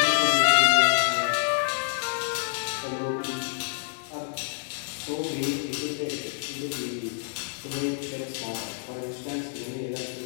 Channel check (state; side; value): silent; right; digital silence